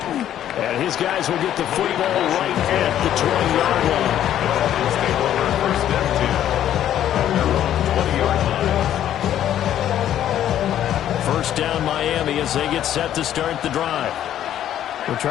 And his guys will get the football right at the 20-yard line. First down Miami as they get set to start the drive. Well,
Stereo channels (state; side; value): quieter; right; 11.2 dB